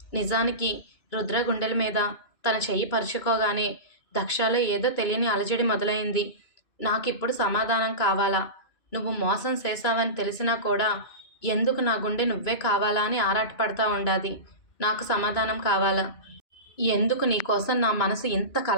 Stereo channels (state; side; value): late; right; 2.5 ms